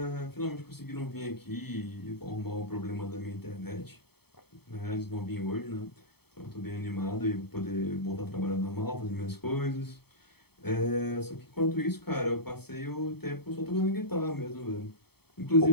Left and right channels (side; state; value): right; late; 0.97 ms